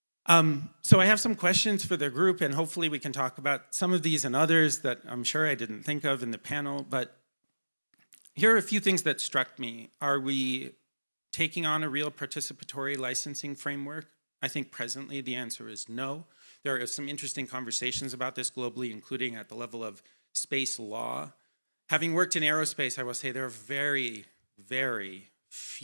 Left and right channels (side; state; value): both; inverted; correlation -1.00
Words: So I have some questions for the group, and hopefully we can talk about some of these and others that I'm sure I didn't think of in the panel, but here are a few things that struck me. Are we taking on a real participatory licensing framework? I think presently the answer is no. There are some interesting conversations about this globally, including at the level of space law. Having worked in aerospace, I will say there are very, very